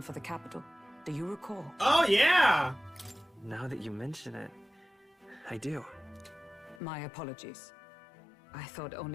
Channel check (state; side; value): drops out; right; at 6.8 s